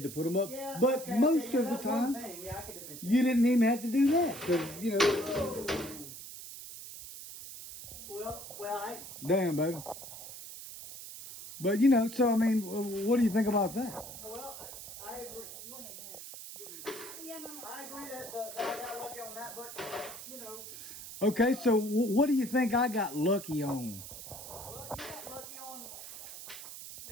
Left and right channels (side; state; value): right; noise; hiss, 12 dB below the sound